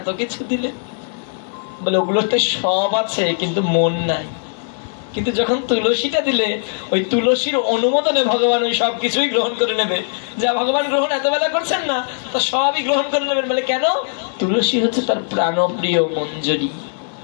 কিছু দিলে। বলে ওগুলোতে সব আছে কিন্তু মন নাই। কিন্তু যখন তুলসীটা দিলে ওই তুলসীর অনুমোদনে ভগবান ওই সব কিছুই গ্রহণ করে নেবে। যা ভগবান গ্রহণ এত বেলা করছেন না, তা সবই গ্রহণ করে নেবেন। বলে কেন? তুলসী হচ্ছে তার প্রাণপ্রিয় মঞ্জরি,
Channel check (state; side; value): silent; right; 62 dB below the other